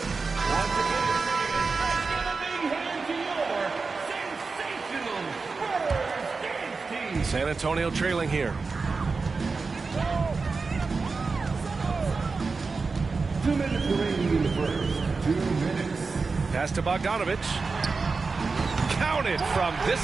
San Antonio trailing here. 2 minutes remaining in the first. 2 minutes. Pass to Bogdanovic. Counted from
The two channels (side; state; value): left; quieter; 4.4 dB